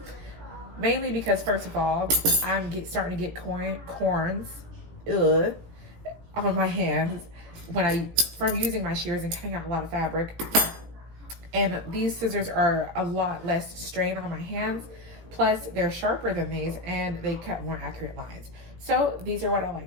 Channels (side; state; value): left; late; 18 ms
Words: Mainly because, first of all, I'm starting to get corns. Ugh. on my hands from using my shears and cutting out a lot of fabric. And these scissors are a lot less strain on my hands. Plus, they're sharper than these and they cut more accurate lines. So these are what I